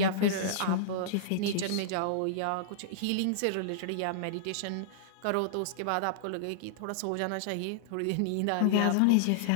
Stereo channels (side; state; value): both; different; correlation -0.02